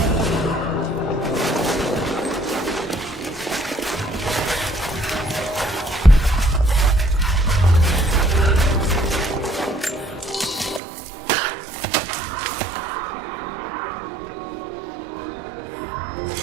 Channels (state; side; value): drops out; left; at 10.8 s